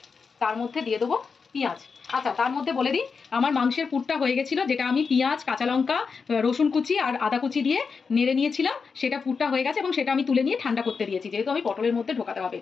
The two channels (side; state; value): right; quieter; 5.3 dB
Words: তার মধ্যে দিয়ে দেবো পেঁয়াজ। আচ্ছা, তার মধ্যে বলে দিই, আমার মাংসের পুরটা হয়ে গেছিলো, যেটা আমি পেঁয়াজ, কাঁচা লঙ্কা, রসুন কুচি আর আদা কুচি দিয়ে নেড়ে নিয়েছিলাম, সেটা পুরটা হয়ে গেছে এবং সেটা আমি তুলে নিয়ে ঠান্ডা করতে দিয়েছি, যেহেতু আমি পটলের মধ্যে ঢোকাতে হবে